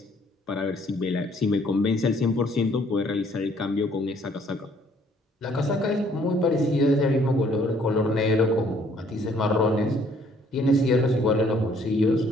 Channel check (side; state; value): both; normal; correlation 0.63